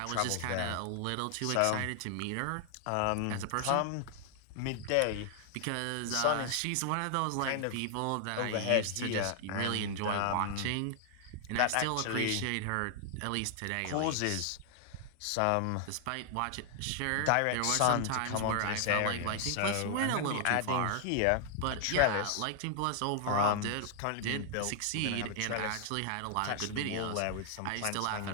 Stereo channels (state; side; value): different; both; correlation 0.00